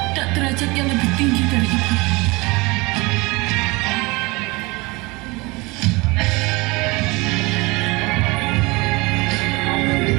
dan derajat yang lebih tinggi dari ibu.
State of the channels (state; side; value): quieter; left; 24.5 dB